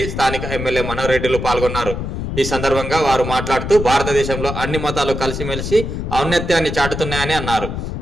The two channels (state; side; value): noise; left; rumble, 5 dB below the sound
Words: స్థానిక ఎమ్మెల్యే మనోహర్ రెడ్డిలు పాల్గొన్నారు. ఈ సందర్భంగా వారు మాట్లాడుతూ భారతదేశంలో అన్ని మతాలు కలిసిమెలిసి ఔన్నత్యాన్ని చాటుతున్నాయని అన్నారు.